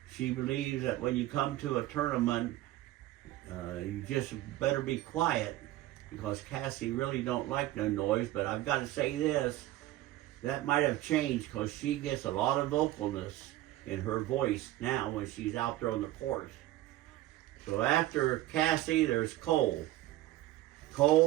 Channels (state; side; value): quieter; left; 15.8 dB